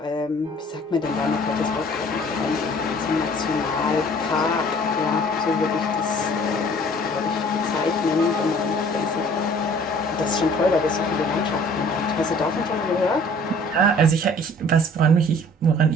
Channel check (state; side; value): normal; both; correlation 0.52